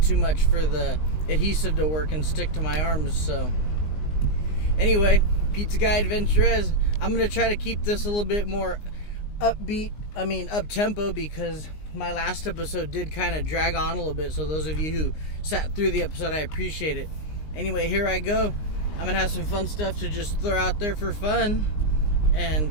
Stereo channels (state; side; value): late; right; 19 ms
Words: too much for the adhesive to work and stick to my arms. So anyway, Pizza Guy AdventurEZ. I'm going to try to keep this a little bit more up-tempo, because my last episode did kind of drag on a little bit. So those of you who sat through the episode, I appreciate it. Anyway, here I go. I'm going to have some fun stuff to just throw out there for fun